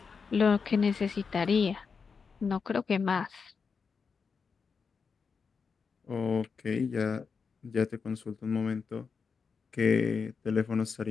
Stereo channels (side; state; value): right; quieter; 5.4 dB